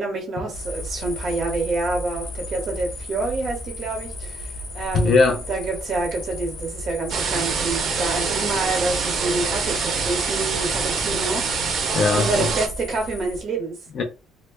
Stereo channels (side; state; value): both; normal; correlation 0.69